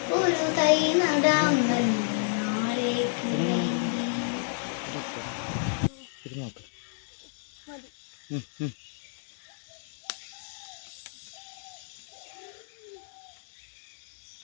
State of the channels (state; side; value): silent; right; digital silence